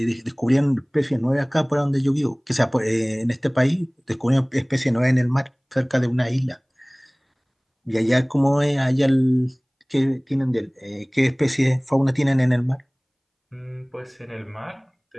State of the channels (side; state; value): both; identical; correlation 1.00